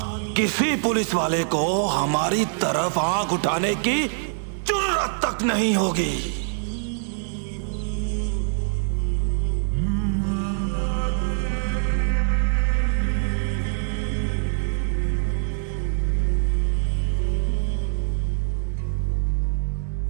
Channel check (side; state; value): left; silent; digital silence